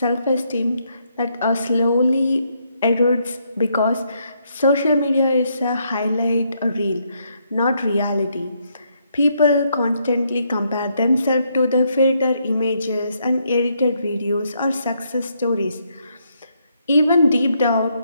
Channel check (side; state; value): both; inverted; correlation -0.75